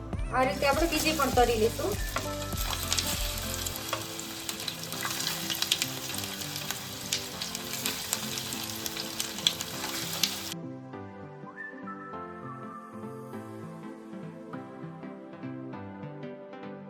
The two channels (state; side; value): identical; both; correlation 1.00